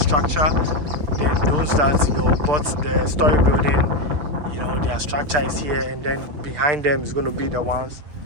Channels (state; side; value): late; left; 6.7 ms